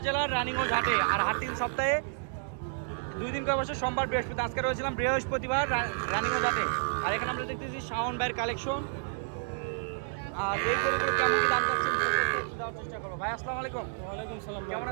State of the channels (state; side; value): silent; left; digital silence